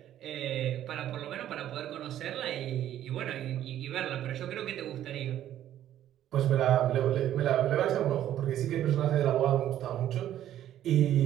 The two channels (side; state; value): left; quieter; 11.8 dB